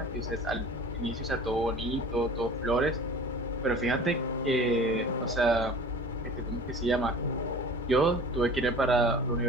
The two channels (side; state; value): both; normal; correlation 0.41